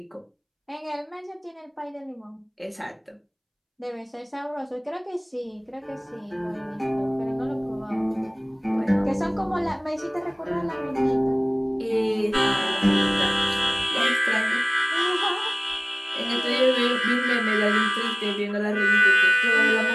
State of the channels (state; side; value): identical; both; correlation 1.00